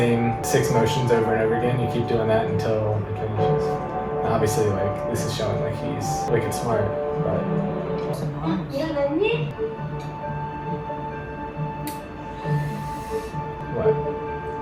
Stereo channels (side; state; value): both; identical; correlation 1.00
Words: 6 motions over and over again. You keep doing that until it finishes. Now, obviously, like, this is showing like he's wicked smart, but what?